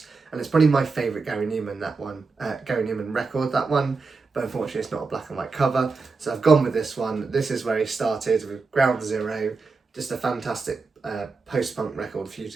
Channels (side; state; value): left; quieter; 4.3 dB